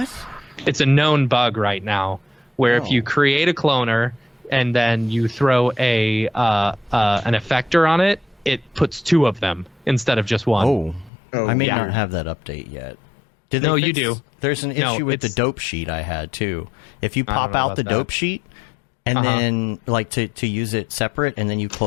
It's a known bug right now where if you create a cloner and then you throw an effector on it, it puts two of them instead of just one. I may not have that update yet. No, you do. There's an issue with the dope sheet I had too. If you pop out the dope sheet and then like to use it separate and then you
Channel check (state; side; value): drops out; right; at 11.1 s